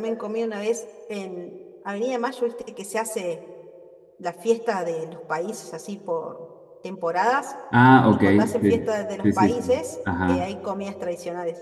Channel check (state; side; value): identical; both; correlation 1.00